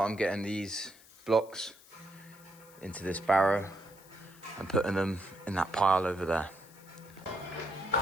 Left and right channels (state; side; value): noise; left; hiss, 23 dB below the sound